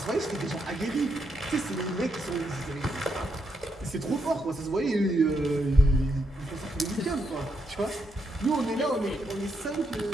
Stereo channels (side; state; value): both; normal; correlation 0.80